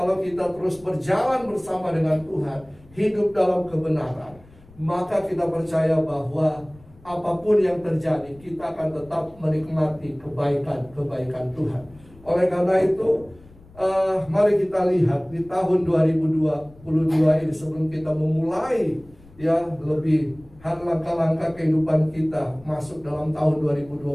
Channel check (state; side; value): noise; left; rumble, 24 dB below the sound